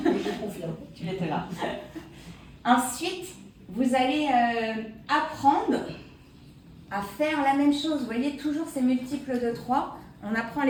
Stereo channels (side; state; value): both; identical; correlation 1.00